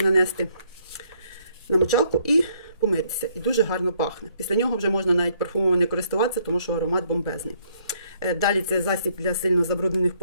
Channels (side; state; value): both; inverted; correlation -0.68